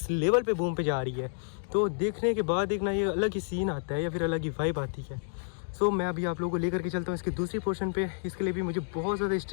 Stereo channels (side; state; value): right; silent; digital silence